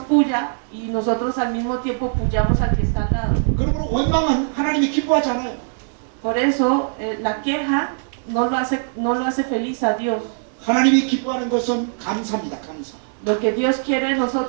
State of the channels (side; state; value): left; silent; digital silence